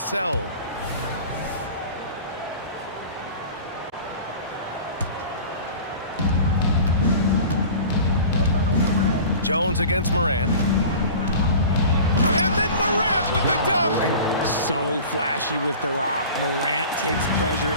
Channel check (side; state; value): both; inverted; correlation -0.40